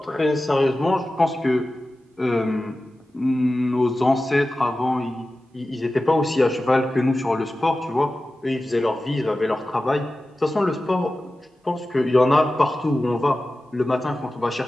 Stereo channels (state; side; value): normal; both; correlation 0.95